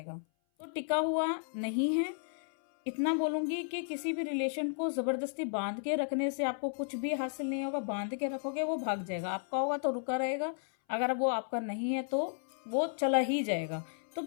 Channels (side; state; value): right; silent; 55 dB below the other